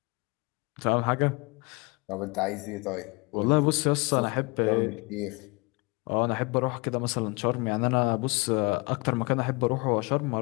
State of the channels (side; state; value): right; quieter; 27.2 dB